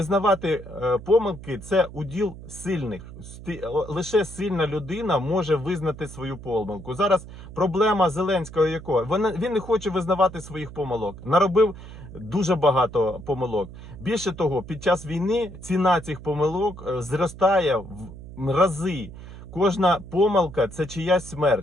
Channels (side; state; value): right; noise; hum, 14 dB below the sound